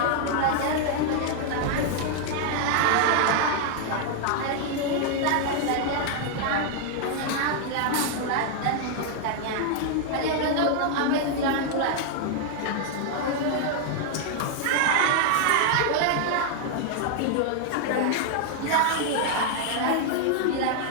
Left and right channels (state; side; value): different; both; correlation 0.00